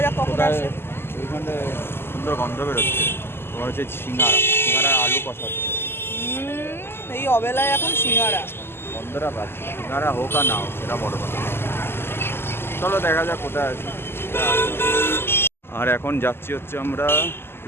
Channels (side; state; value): right; late; 0.11 ms